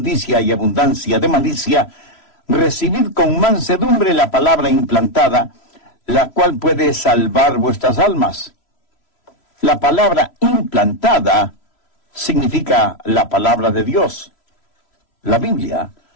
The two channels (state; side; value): late; right; 3.0 ms